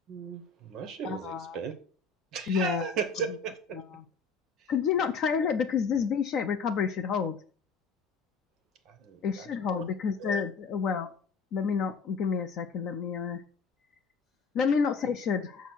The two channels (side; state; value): right; quieter; 4.7 dB